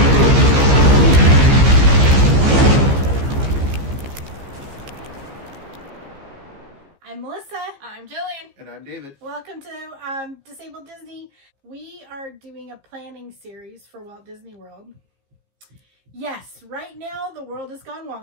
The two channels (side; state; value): left; late; 15 ms